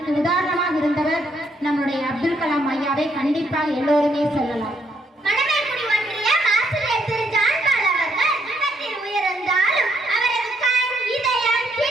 உதாரணமாக இருந்தவர் நம்முடைய அப்துல் கலாம் ஐயாவை கண்டிப்பாக எல்லோருமே சொல்லலாம்.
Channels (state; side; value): normal; both; correlation 0.73